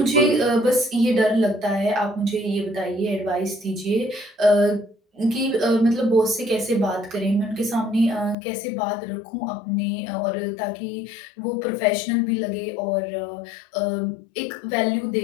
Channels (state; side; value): drops out; right; at 8.3 s